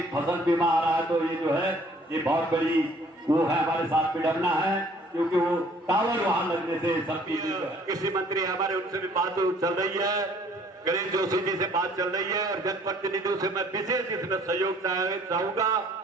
फसल बीमा आ रहा है। तो ये जो है ये बहुत बड़ी वो है, हमारे साथ विडम्बना है, क्योंकि वो टावर वहां लगने से सबकी कृषि मंत्री हमारे उनसे भी बात चल रही है, गणेश जोशी जी से बात चल रही है, और जनप्रतिनिधियों से मैं विशेष इसमें सहयोग चाहूंगा।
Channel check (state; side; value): normal; both; correlation 0.58